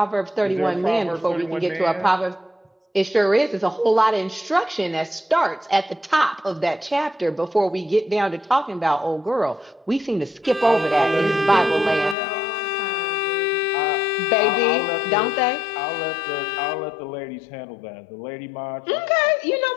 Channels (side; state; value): right; drops out; at 12.2 s